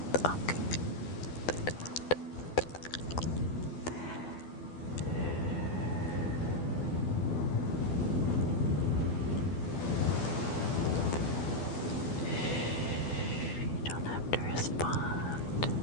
Okay. You don't have to respond.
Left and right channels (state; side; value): late; right; 12 ms